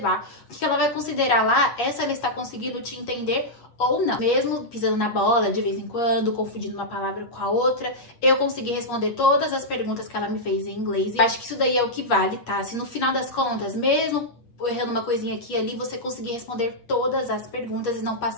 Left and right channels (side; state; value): right; late; 8.4 ms